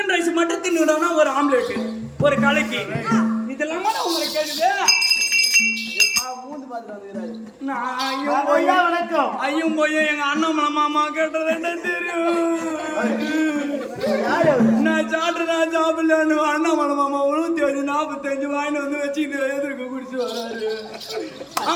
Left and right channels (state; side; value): identical; both; correlation 1.00